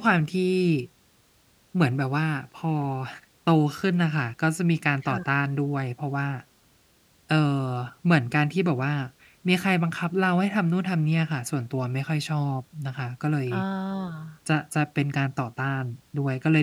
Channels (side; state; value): both; identical; correlation 1.00